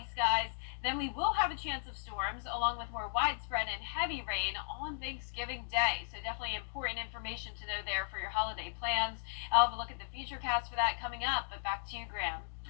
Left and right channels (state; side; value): silent; right; digital silence